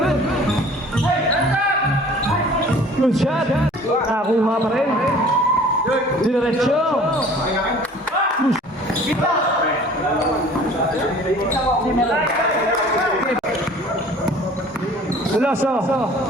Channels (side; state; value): both; normal; correlation 0.49